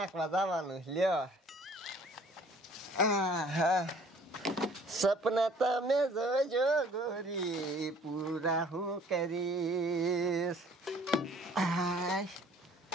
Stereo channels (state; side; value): normal; both; correlation 0.55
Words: જવાનું લ્યો. સપના તમે જોજો ગોરી, પૂરા હું કરીશ.